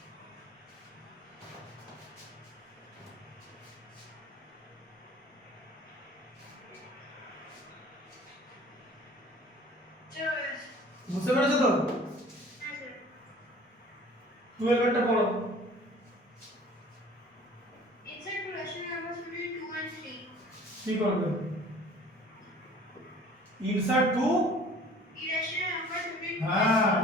Sure. বুঝতে পেরেছো তো? হ্যাঁ স্যার 12 এরটা পড়ো। insert two rational numbers between 2 and 3 কি করবে? Insert two, irrational numbers between 2 and হ্যাঁ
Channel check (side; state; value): both; normal; correlation 0.49